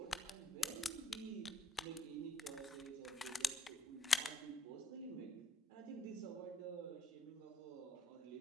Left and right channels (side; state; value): both; normal; correlation 0.71